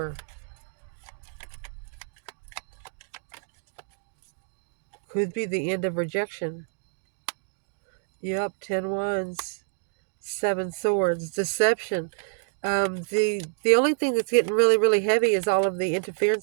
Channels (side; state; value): left; silent; digital silence